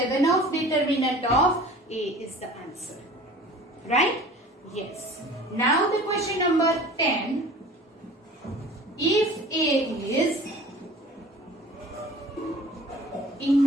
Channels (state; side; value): normal; both; correlation 0.45